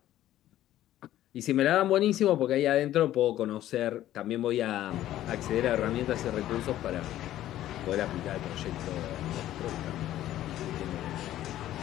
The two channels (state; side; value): quieter; right; 13.3 dB